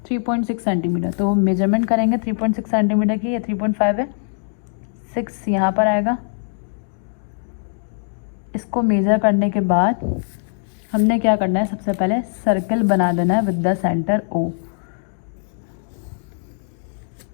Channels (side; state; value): right; silent; digital silence